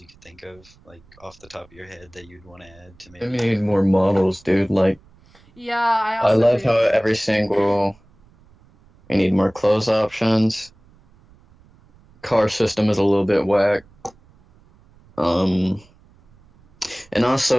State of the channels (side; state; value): right; noise; rumble, 29 dB below the sound